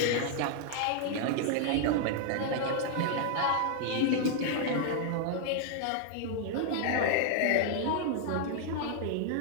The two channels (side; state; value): both; different; correlation 0.00